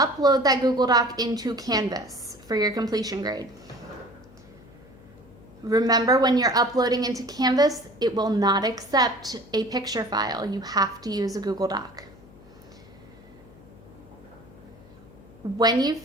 that Google Doc into Canvas for your completion grade. Remember, when you're uploading into Canvas, it will not accept a picture file. You have to use a Google Doc. When you've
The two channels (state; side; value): noise; left; hum, 23 dB below the sound